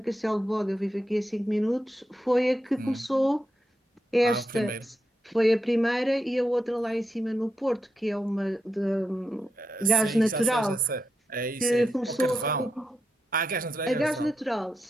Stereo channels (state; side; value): normal; both; correlation 0.85